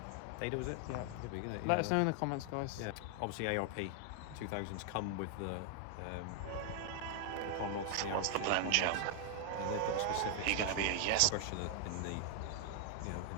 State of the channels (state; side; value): different; both; correlation 0.00